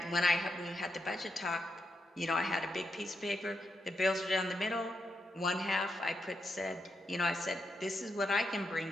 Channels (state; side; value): normal; both; correlation 0.83